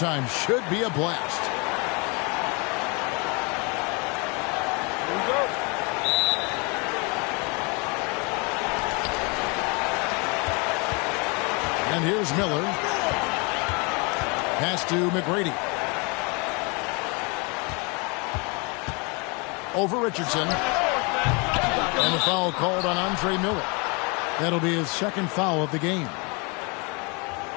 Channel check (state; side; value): quieter; right; 30.9 dB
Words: Should be a blast. Here we go. And here's Miller. Pass to McGrady. Over Richardson. And a foul called on Andre Miller. That'll be his second foul of the game.